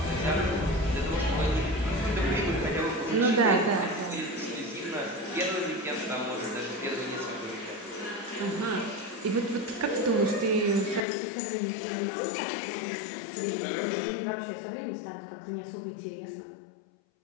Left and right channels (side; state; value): right; drops out; at 11.1 s